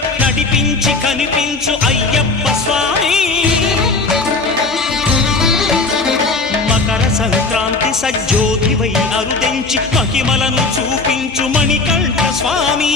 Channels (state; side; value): quieter; right; 3.6 dB